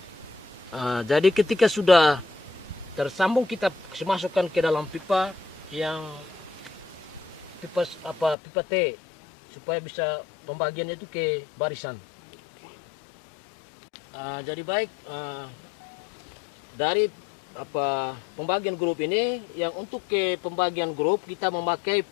Jadi ketika sudah tersambung, kita masukkan ke dalam pipa yang pipa T supaya bisa pembagiannya itu ke barisan. Jadi baik, dari pembagian grup ini, yang untuk ke pembagian grup kita memakai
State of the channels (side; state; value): right; drops out; at 8.3 s